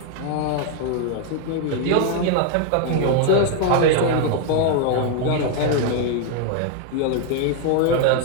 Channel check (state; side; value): different; both; correlation 0.00